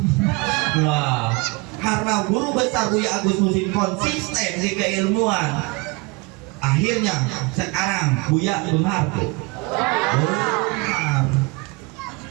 Wah, karena guru besar Buya Agus Muslim konsisten di keilmuan. Akhirnya sekarang Buya benar tuh.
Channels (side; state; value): left; quieter; 26.8 dB